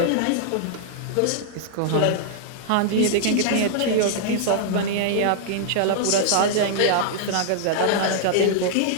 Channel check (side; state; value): both; different; correlation -0.01